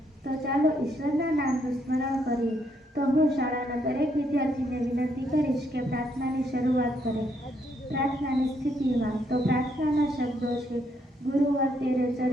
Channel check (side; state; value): both; normal; correlation 0.74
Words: તો ચાલો ઈશ્વરના નામનું સ્મરણ કરીએ. તો હું શાળાના દરેક વિદ્યાર્થીને વિનંતી કરીશ કે પ્રાર્થનાની શરૂઆત કરે. પ્રાર્થનાની સ્થિતિમાં તો પ્રાર્થનાના શબ્દો છે, ગુરુવર તેરે